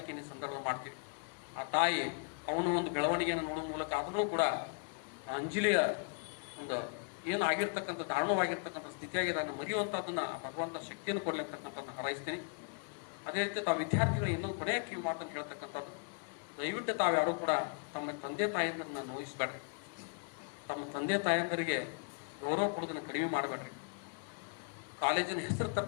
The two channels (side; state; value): right; quieter; 39.4 dB